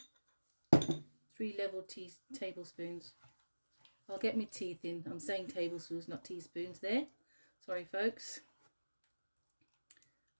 3 level tablespoons. I'll get my teeth in. I'm saying tablespoons, not teaspoons there. Sorry folks.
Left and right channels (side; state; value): both; inverted; correlation -1.00